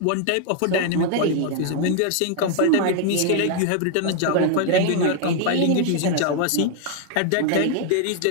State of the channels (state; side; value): different; both; correlation 0.00